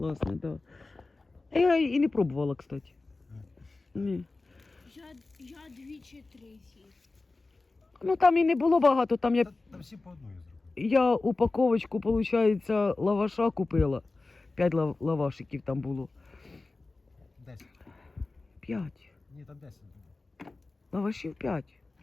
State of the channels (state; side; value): quieter; right; 3.4 dB